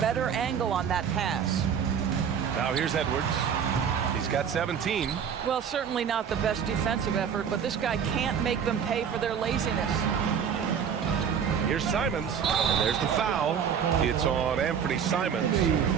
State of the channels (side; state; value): left; quieter; 7.6 dB